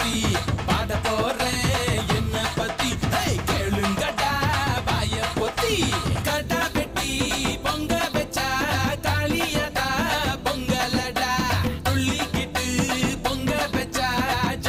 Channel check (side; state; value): both; identical; correlation 1.00